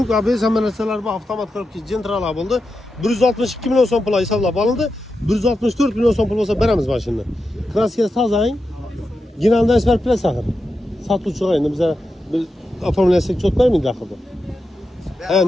ABS hamma narsalar bor, avtomat korobka gentralar bo'ldi. 162 million so'm pul hisoblab olindi. 164 million so'm pul bo'lsa beramiz mashinani. Kraskasi tozang. Ginaldan isbar plas axir. Sotuvchi endi bizlar oformlasak cho't bermaydi axir.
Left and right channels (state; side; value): normal; both; correlation 0.89